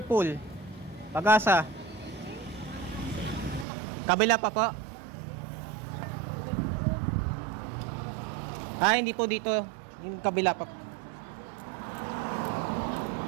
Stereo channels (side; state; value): left; drops out; at 3.7 s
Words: Pool Pag-asa. Kabila pa po. Hindi po dito. Yung kabila pa po.